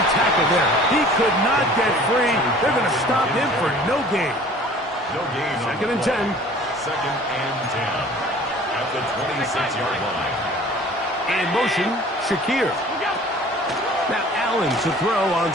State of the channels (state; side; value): normal; both; correlation 0.48